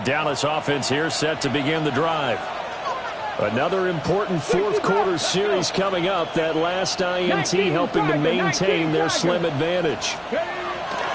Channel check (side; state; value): both; identical; correlation 1.00